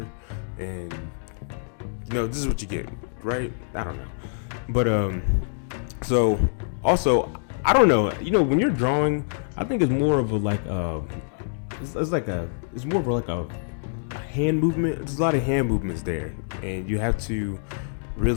and this is what you get, right? I don't know, but so also I don't know, when you're drawing, I think it's more of it's more of a hand movement. There's a lot of hand movements there, and you have to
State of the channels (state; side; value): silent; right; digital silence